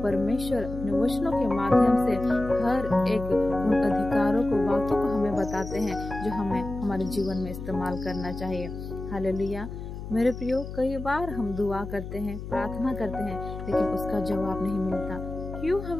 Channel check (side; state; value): left; noise; hum, 9 dB below the sound